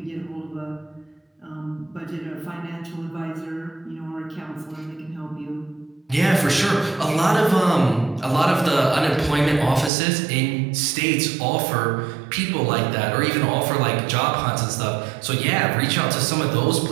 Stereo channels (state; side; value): drops out; left; at 9.9 s